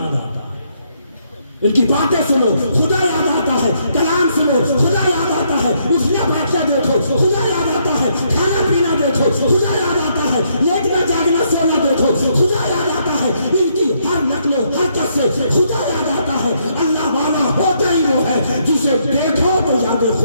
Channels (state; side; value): inverted; both; correlation -0.73